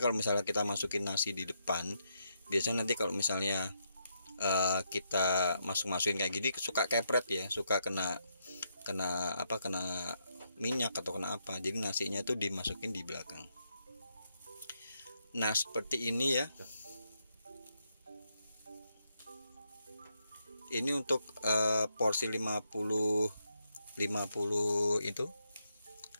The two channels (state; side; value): inverted; both; correlation -0.80